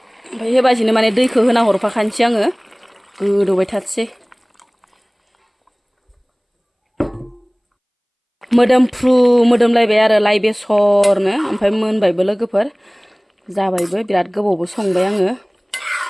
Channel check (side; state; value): both; identical; correlation 1.00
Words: ओमफ्राय हेबाजिनो माने दैखौ होना हरफाखानोसै आङो गोदौबाय थाथोंसै मोदोमलायबाय आरो लाइ बेसरनो ओमफ्राय मोनबायबो लोगोफोर जाबायबो बिराद गोबावबो संबाय आङो